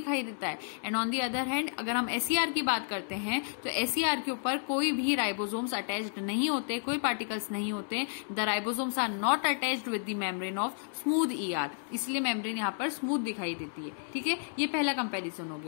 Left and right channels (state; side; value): silent; right; digital silence